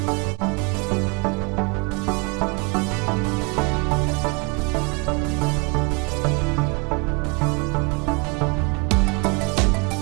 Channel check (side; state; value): left; quieter; 30.7 dB